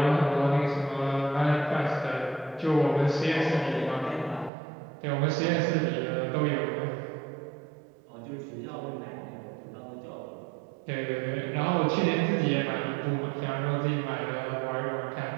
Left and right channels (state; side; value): drops out; left; at 4.5 s